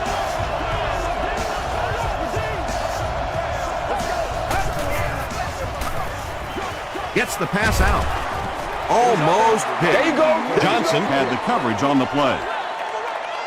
Gets the pass out. Almost hit. There you go. Johnson had the coverage on the play.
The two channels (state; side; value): identical; both; correlation 1.00